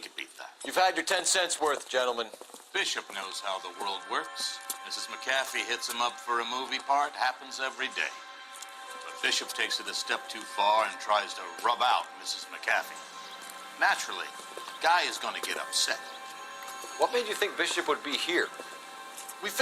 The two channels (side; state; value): both; identical; correlation 1.00